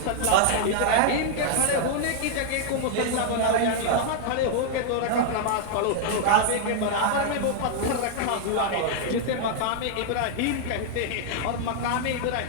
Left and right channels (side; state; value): both; different; correlation -0.01